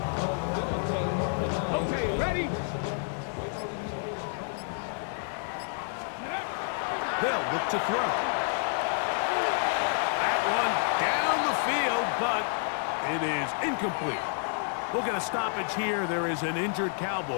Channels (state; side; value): silent; right; 58 dB below the other